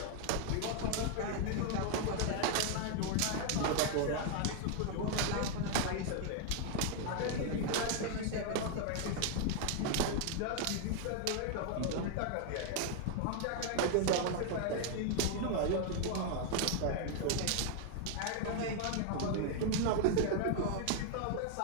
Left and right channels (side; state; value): both; different; correlation 0.00